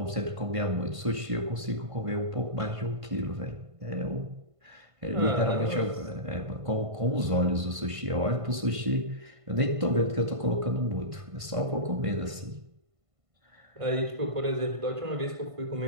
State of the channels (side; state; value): left; late; 1.5 ms